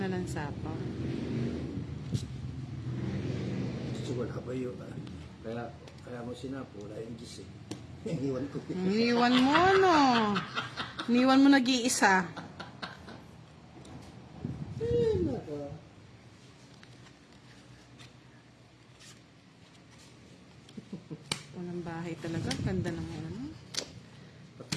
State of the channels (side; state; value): both; identical; correlation 1.00